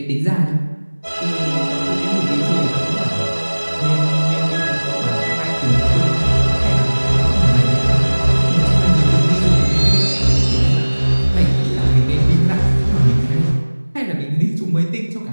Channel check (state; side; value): inverted; both; correlation -1.00